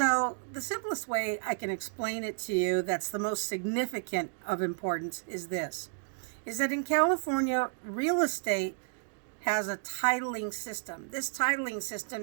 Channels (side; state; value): left; silent; digital silence